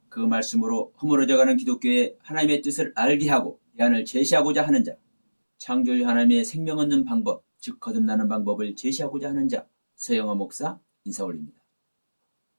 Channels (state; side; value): inverted; both; correlation -1.00